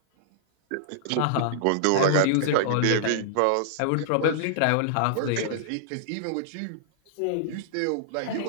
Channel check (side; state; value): both; different; correlation -0.02